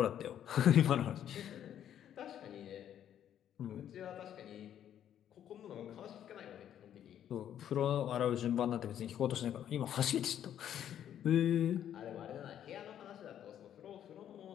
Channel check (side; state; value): right; quieter; 10.2 dB